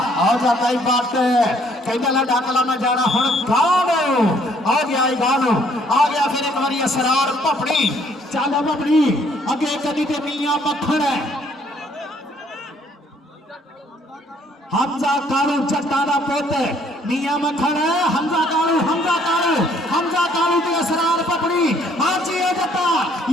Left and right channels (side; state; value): both; normal; correlation 0.64